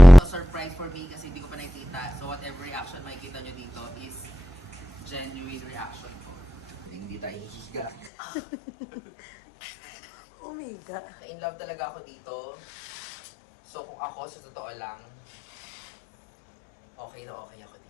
Surprise for me kasi hindi ko pa nakikita. So whatever reaction makikita nyo dito is genuine reaction ko. Hindi tayo hihiga. Oh my God. In love talaga ako dito. So kung ako sa totoo lang, okay na okay ako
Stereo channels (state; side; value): drops out; right; at 8.1 s